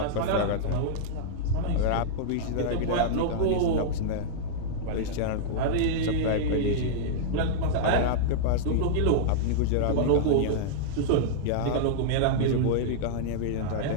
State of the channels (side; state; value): both; different; correlation -0.02